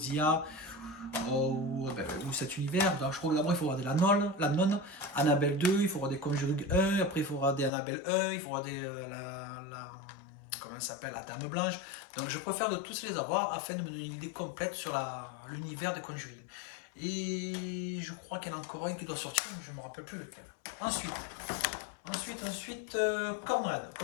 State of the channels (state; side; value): drops out; right; at 7.7 s